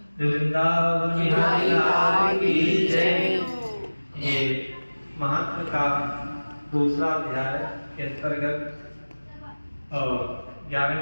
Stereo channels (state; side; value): inverted; both; correlation -1.00